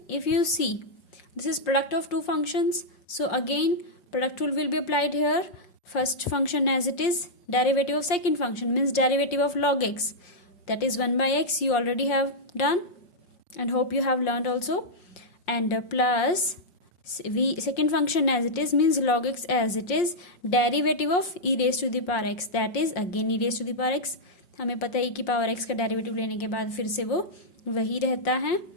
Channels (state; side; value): late; right; 5.6 ms